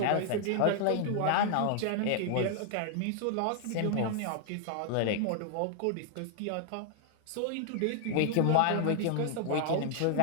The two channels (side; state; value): both; different; correlation 0.00